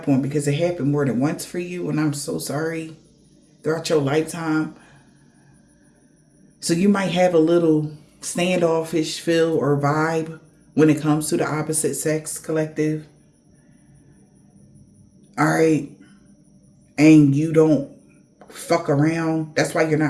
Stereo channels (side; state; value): both; identical; correlation 1.00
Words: on, because it happened more than once for you, and I'm so sorry, throughout your lifetime. So you might have a little standoffish feel or vibe when it comes to the opposite sex, collective. All right. And you don't fuck around. That's why you're